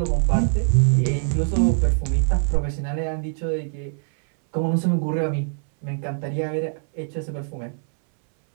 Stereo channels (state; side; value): silent; left; 64 dB below the other